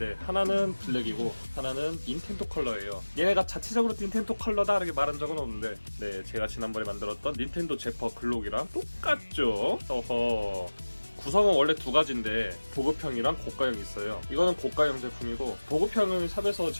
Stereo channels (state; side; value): inverted; both; correlation -1.00